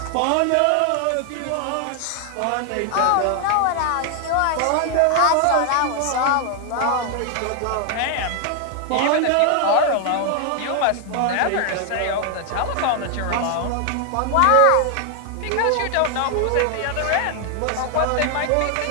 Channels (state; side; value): different; both; correlation 0.00